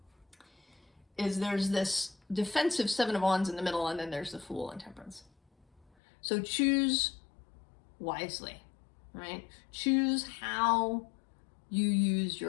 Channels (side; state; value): right; drops out; at 5.9 s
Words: There's this defensive 7 of Wands in the middle, and then there's the Fool and Temperance. So choose wisely, right? Choose how you use